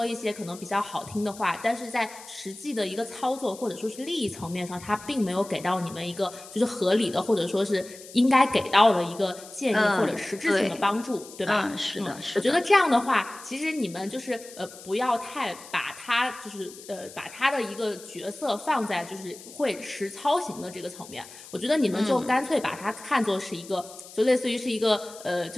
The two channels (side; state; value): left; noise; hiss, 17 dB below the sound